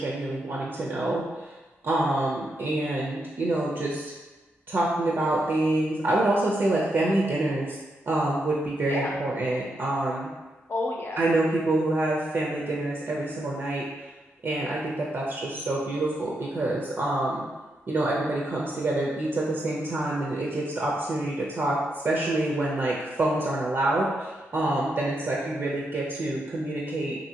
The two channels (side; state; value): both; normal; correlation 0.82